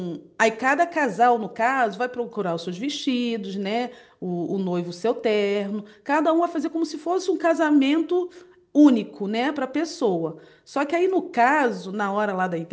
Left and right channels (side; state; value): both; identical; correlation 1.00